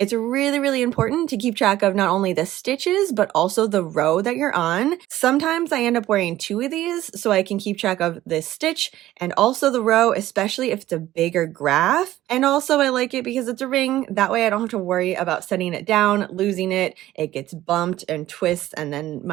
really important to keep track of not only the stitches, but also the row that you're on. Sometimes I end up wearing two of these so I can keep track of the stitch and also the row, especially if it's a bigger graph. And also I like it because it's a ring. That way I don't have to worry about setting it down, losing it. It gets bumped and twists and then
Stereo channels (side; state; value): left; quieter; 14.7 dB